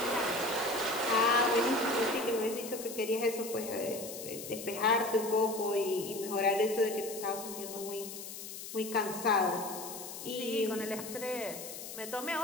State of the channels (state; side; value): noise; left; hiss, 10 dB below the sound